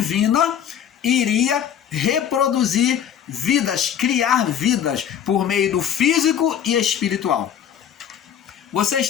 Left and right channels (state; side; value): quieter; right; 9.1 dB